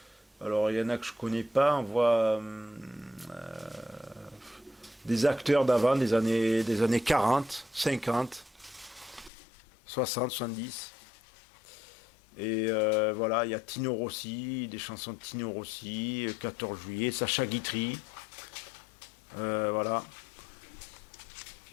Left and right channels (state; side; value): drops out; right; at 9.3 s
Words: alors, il y en a que je connais pas. On voit... des acteurs d'avant, des années 40, 50, 60, 70. Et voilà, il y a Tino Rossi, des chansons de Tino Rossi, 14 juillet, Sacha Guitry. Voilà.